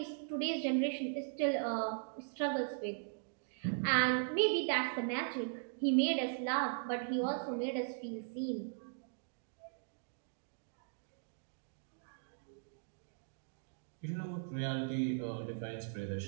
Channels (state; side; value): silent; left; digital silence